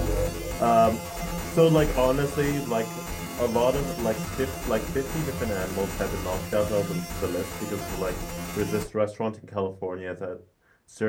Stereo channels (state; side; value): identical; both; correlation 1.00